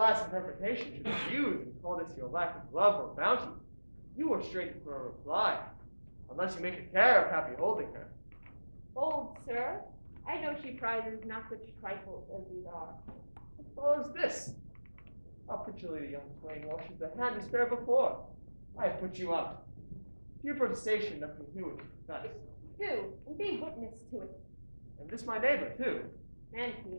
interpretation should refuse and call this your lack of love or bounty, you were straight for a reply, unless you make a care of happy holding her. Old sir, I know she prizes not such trifles as these are. What follows this? How prettily the young swain washes the hand to spare before. I have put you out. Your protestation nothing to do with confess. Do, and be witness to it. And this my neighbor, too. And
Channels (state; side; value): inverted; both; correlation -1.00